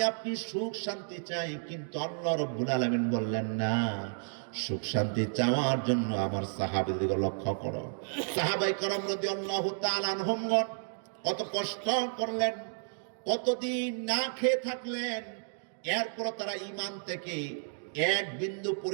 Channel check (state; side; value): silent; left; digital silence